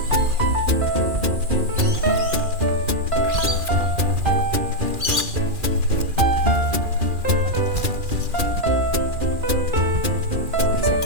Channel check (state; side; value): late; left; 2.4 ms